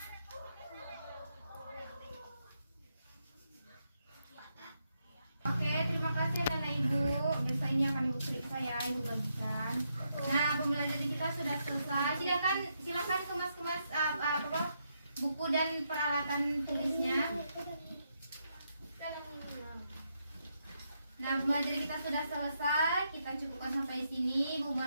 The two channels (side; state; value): both; inverted; correlation -0.80